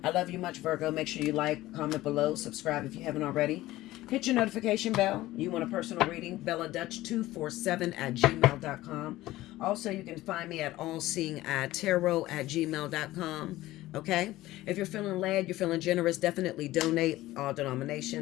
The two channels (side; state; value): right; quieter; 16.6 dB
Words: I love you much, Virgo. Make sure you like, comment below, subscribe if you haven't already. Hit your notification bell. You want a personal reading? BellaDutch247@gmail.com. Also, you can find me at Allseeingeyetarot@gmail.com. Okay? If you're feeling led, you're feeling generous, definitely donate. All